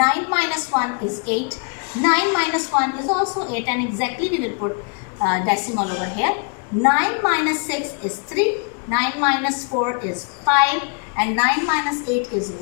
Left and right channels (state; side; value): quieter; right; 38.7 dB